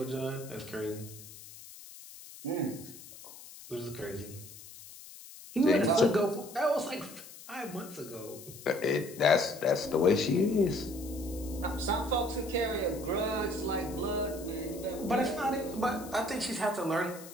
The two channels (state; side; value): noise; left; hiss, 16 dB below the sound